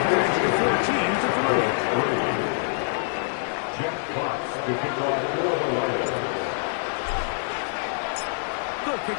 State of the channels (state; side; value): silent; right; 62 dB below the other